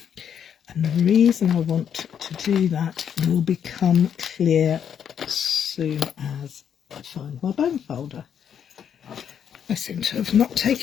And the reason I want to do that will become clear as soon as I find my bone folder. I seem to have not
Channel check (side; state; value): right; quieter; 8.4 dB